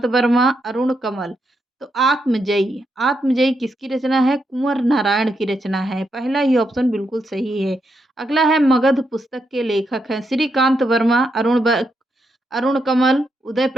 वर्मा, अरुण कमल। तो आत्मजयी आत्मजयी किसकी रचना है? कुंवर नारायण की रचना है। पहला ही ऑप्शन बिल्कुल सही है। अगला है, मगध पुस्तक के लेखक हैं श्रीकांत वर्मा, अरुण कमल, उदय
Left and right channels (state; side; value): normal; both; correlation 0.82